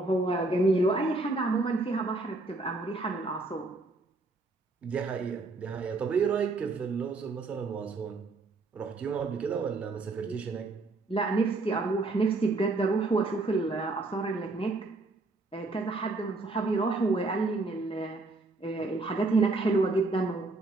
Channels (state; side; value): quieter; left; 3.3 dB